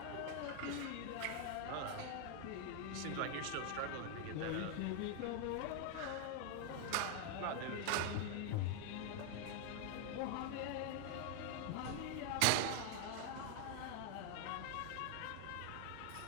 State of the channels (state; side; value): different; both; correlation 0.01